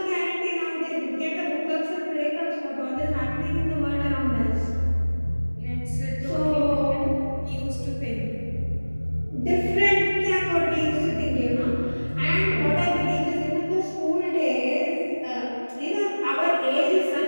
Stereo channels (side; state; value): both; inverted; correlation -1.00